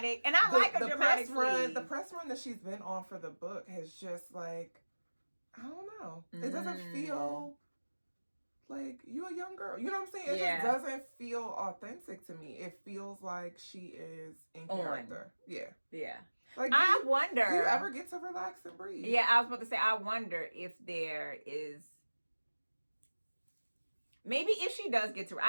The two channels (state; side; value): inverted; both; correlation -1.00